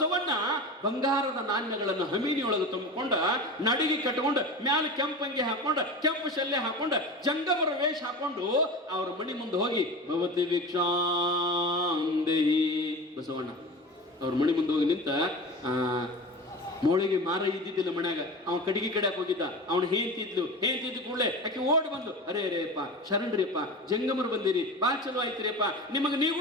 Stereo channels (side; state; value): both; normal; correlation 0.30